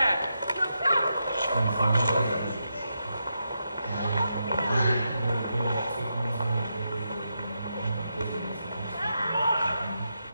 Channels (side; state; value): both; inverted; correlation -0.85